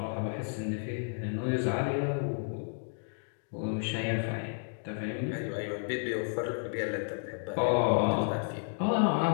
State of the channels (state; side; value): silent; right; digital silence